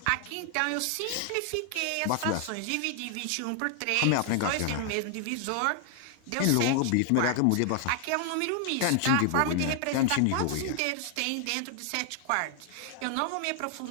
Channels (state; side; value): different; both; correlation 0.00